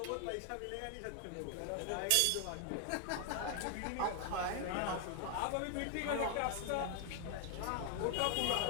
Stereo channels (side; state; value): both; different; correlation 0.00